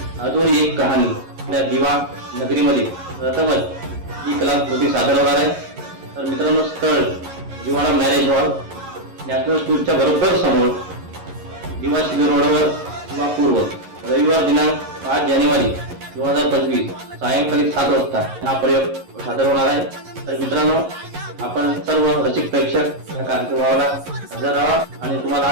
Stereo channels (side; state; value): left; late; 11 ms